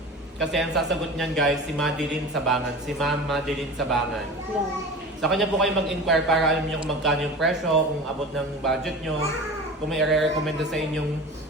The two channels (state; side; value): normal; both; correlation 0.34